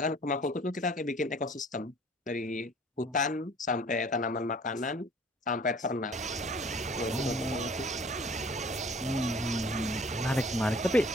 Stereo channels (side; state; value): both; normal; correlation 0.52